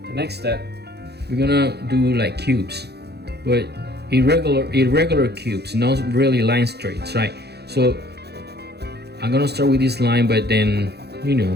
step, we're gonna do like cubes, but irregular cubes, not really line straights, right? So I'm gonna start with this line, but then, you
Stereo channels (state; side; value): late; left; 0.48 ms